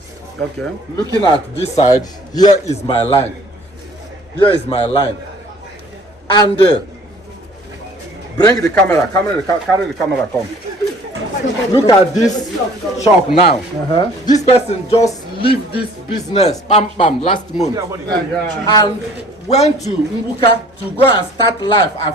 Okay. Looking at this side, here is my line. Here is my line. And bring the camera, carry the camera, come. Look at this shop now. This person just leave this business, last month. And went to Mbuka to go and start life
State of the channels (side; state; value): both; normal; correlation 0.52